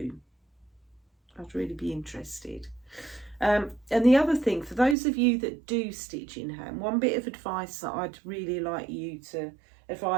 I'd really be interested. And the other thing, for those of you that do stitch in hand, one bit of advice that I'd really like you to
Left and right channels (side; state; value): left; drops out; at 5.0 s